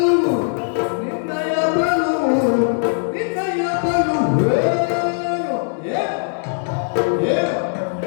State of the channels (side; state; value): right; silent; digital silence